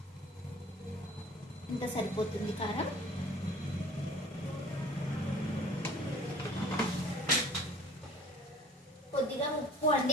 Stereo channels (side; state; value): both; normal; correlation 0.48